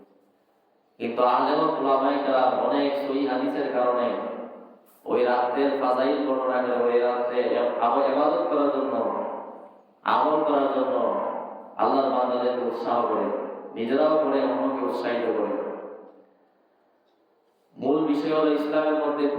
কিন্তু আলেম উলামায়ে কেরাম অনেক সহিহ হাদিসের কারণে ওই রাতের ফাজাইল বর্ণনা করে ওই রাতে ইবাদত করার জন্য, আমল করার জন্য আল্লাহর বান্দাদেরকে উৎসাহ করে, নিজেরাও করে, অন্যকে উৎসাহিত করে। মূল বিষয় হলো ইসলামের মধ্যে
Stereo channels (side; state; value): both; identical; correlation 1.00